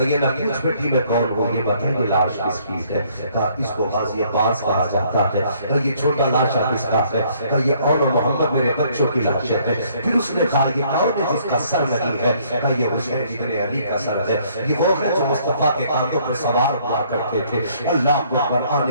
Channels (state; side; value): inverted; both; correlation -0.63